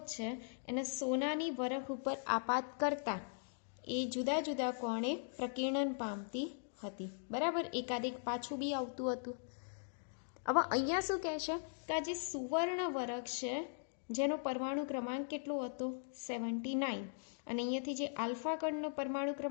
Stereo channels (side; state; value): right; silent; digital silence